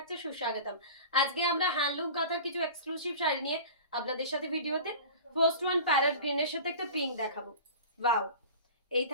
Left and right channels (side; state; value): both; inverted; correlation -0.37